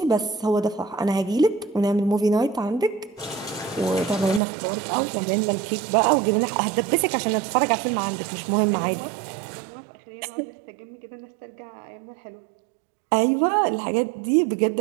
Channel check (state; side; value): drops out; left; at 4.4 s